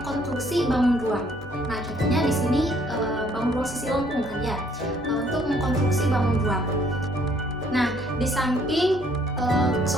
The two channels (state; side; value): normal; both; correlation 0.64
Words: bangun ruang. Nah, contohnya di sini bangun ruang sisi lengkung kan ya, untuk mengkonstruksi bangun ruang. Nah, di samping